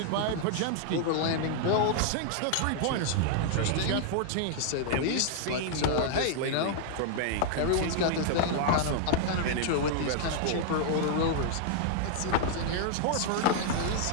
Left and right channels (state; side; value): different; both; correlation 0.00